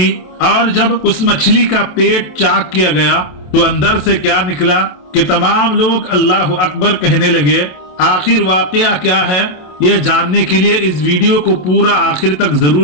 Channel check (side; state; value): right; late; 27 ms